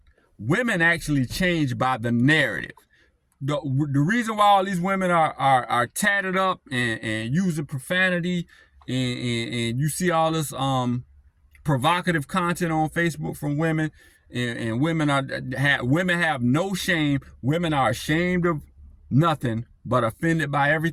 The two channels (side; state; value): both; identical; correlation 1.00